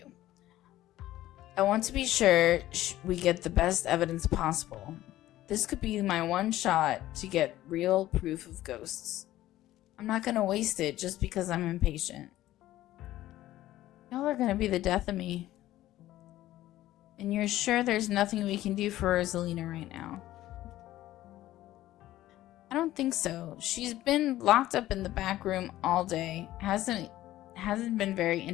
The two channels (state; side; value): quieter; right; 14.8 dB